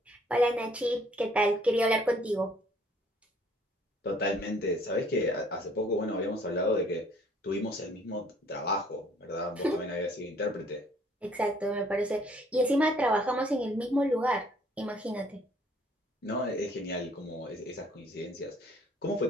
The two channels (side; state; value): both; normal; correlation 0.60